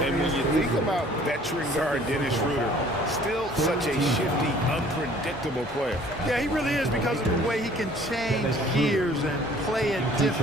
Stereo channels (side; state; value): both; normal; correlation 0.54